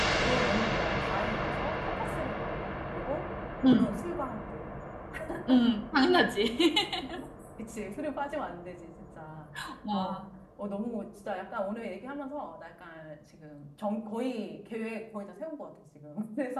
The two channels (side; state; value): both; identical; correlation 1.00